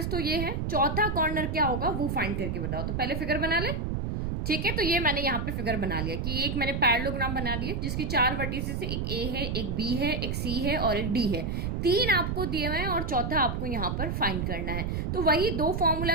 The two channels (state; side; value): noise; right; rumble, 2 dB below the sound